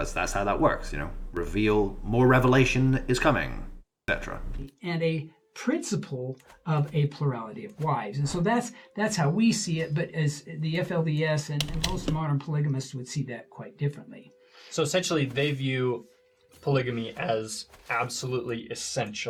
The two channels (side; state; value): both; identical; correlation 1.00